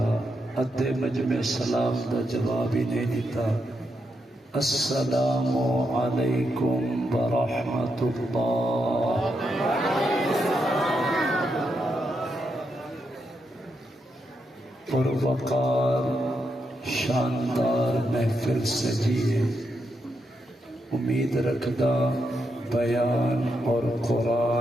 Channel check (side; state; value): both; normal; correlation 0.82